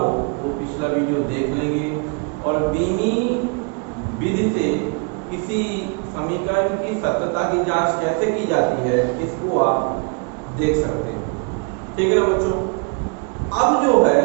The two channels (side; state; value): left; quieter; 34.8 dB